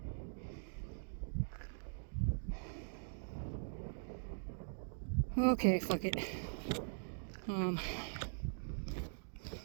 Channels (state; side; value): silent; left; digital silence